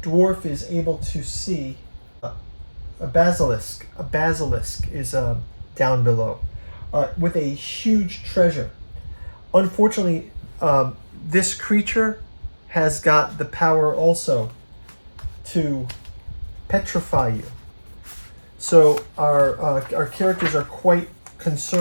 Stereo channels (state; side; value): inverted; both; correlation -1.00